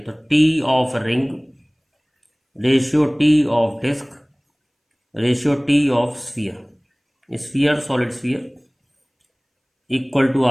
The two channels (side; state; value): both; identical; correlation 1.00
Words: T of ring ratio T of disc ratio T of sphere solid sphere equal to